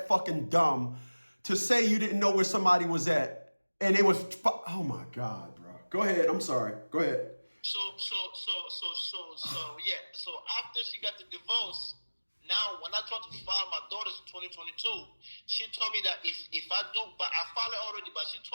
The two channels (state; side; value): inverted; both; correlation -1.00